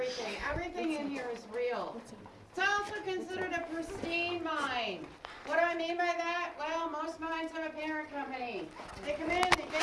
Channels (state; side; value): identical; both; correlation 1.00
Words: Everything in here is real. It's also considered a pristine mine. What do I mean by that? Well, most mines have a parent company. They come in, they